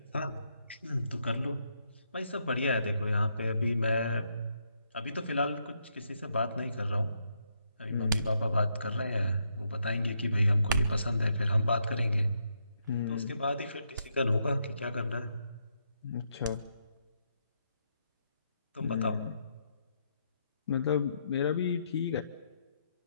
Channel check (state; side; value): inverted; both; correlation -0.78